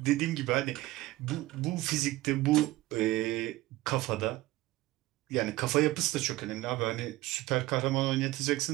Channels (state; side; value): quieter; left; 17.9 dB